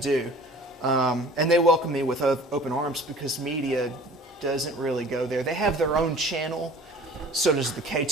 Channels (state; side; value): normal; both; correlation 0.46